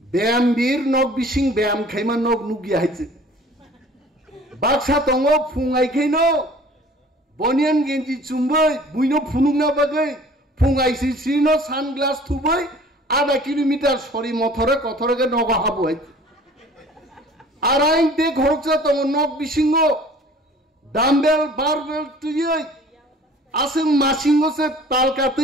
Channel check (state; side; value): normal; both; correlation 0.49